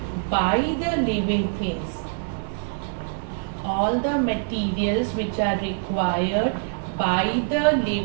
by the living things. All the materials which are required by the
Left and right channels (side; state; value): left; silent; 56 dB below the other